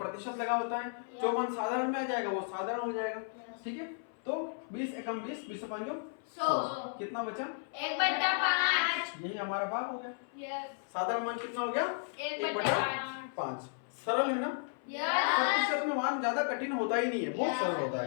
लगा होता है, जो मान साधारण में आ जाएगा वो साधारण हो जाएगा। ठीक है, तो 20 एकम 20, 20 से 5 100, कितना बचा? 1/5। यही हमारा भाग हो गया। यस। साधारण मान कितना हो गया? 1/5। सरल है ना? यस। प्रतिशत में मान ज्यादा कठिन होता ही नहीं है, बहुत सरल होता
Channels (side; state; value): right; silent; 55 dB below the other